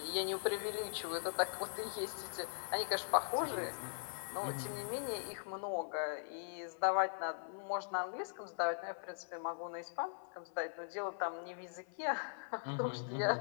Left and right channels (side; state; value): right; silent; 51 dB below the other